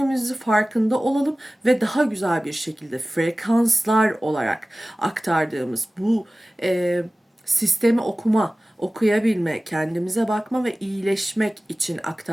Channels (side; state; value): both; normal; correlation 0.97